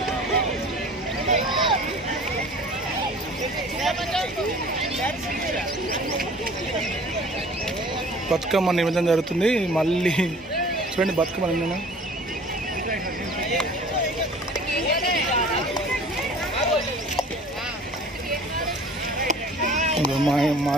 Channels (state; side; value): normal; both; correlation 0.47